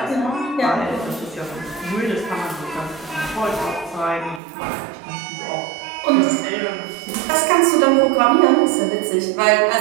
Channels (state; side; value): drops out; left; at 4.4 s